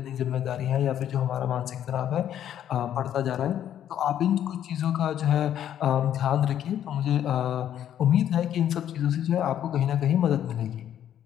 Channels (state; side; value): quieter; right; 10.5 dB